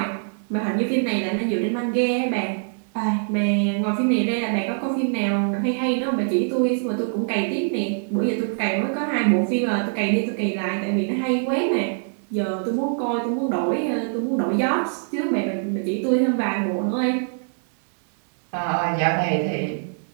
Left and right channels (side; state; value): left; silent; digital silence